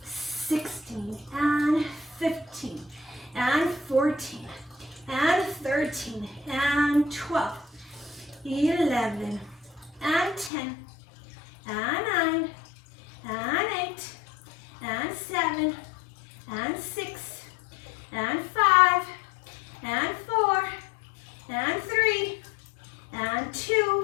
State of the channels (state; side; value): drops out; right; at 10.5 s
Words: 16, and 15, and 14, and 13, and 12, 11, and 10, and 9, and 8, and 7, and 6, and 5, and 4, and 3, and